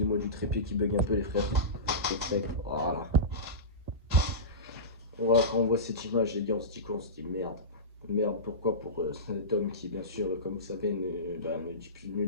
du trépied qui bug un peu les frères. Voilà. Voilà, quand on voit cette image, les gars, on se dit quoi? On se dit merde. Merde, pourquoi? Pour cet homme qui, bien sûr, comme vous savez, ne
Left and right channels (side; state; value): both; normal; correlation -0.20